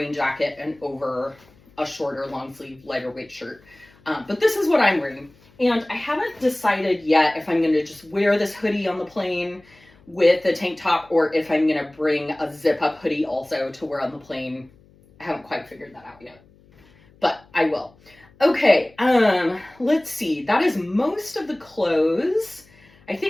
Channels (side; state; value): left; noise; hum, 29 dB below the sound